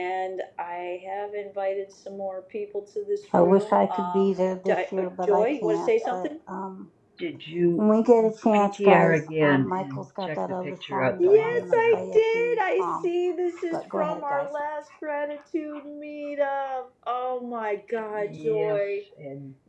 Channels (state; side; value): identical; both; correlation 1.00